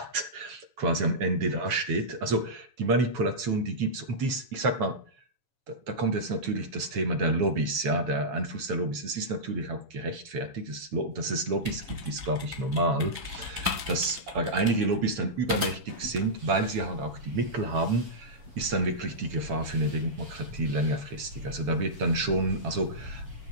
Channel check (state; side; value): late; left; 7.1 ms